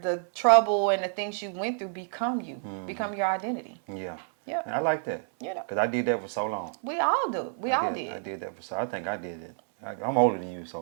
the trouble and the things you went through become you. Become your identity. Yeah. Yeah. And I like that. You know. Because I did that for so long. We all do. I did that for so. I think I did it. I'm older than you,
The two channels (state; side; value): silent; left; 59 dB below the other